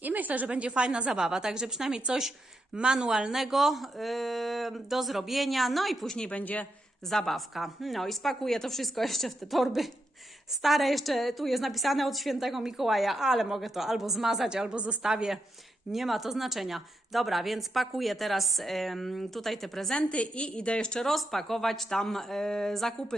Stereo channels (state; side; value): normal; both; correlation 0.84